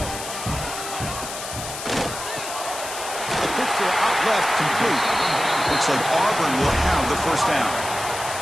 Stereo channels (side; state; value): left; noise; hiss, 8 dB below the sound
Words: A quick throw out left, complete. Looks like Auburn will have the first down.